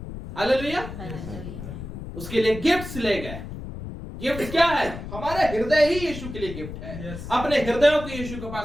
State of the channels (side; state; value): left; noise; rumble, 9 dB below the sound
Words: हालेलुया। उसके लिए गिफ्ट्स ले गए। गिफ्ट क्या है? हमारे हृदय ही यीशु के लिए गिफ्ट है। Yes. अपने हृदयों को यीशु के